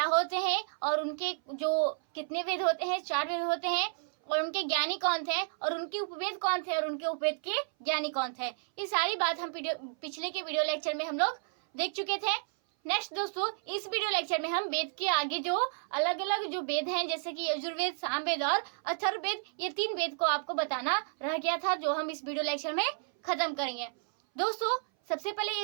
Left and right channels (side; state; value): left; silent; 57 dB below the other